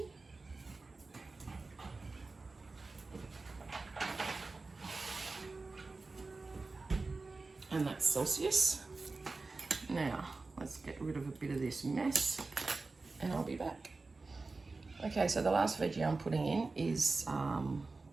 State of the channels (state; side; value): quieter; left; 3.7 dB